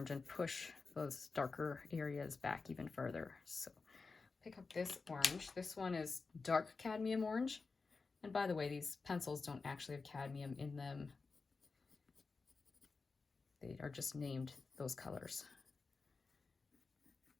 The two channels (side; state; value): right; quieter; 4.3 dB